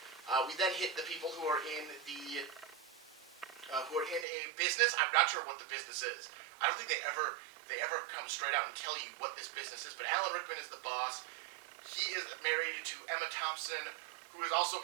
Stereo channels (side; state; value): left; drops out; at 4.2 s